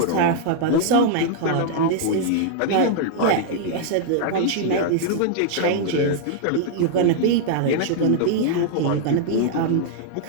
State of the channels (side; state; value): both; different; correlation -0.01